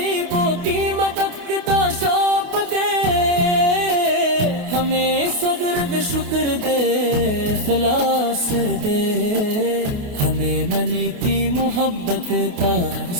کی مدد کا شوق دے، ہمیں صبر دے شکر دے اخلاص دے، ہمیں منی کی محبت کا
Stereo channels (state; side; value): late; left; 28 ms